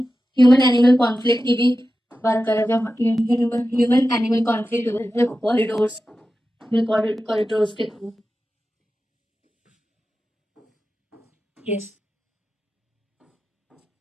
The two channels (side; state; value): both; normal; correlation 0.93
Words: एनिमल कॉन्फ्लिक्ट की भी बात कर रहे हैं, ह्यूमन एनिमल कॉन्फ्लिक्ट कॉरिडोर्स के थ्रू। यस,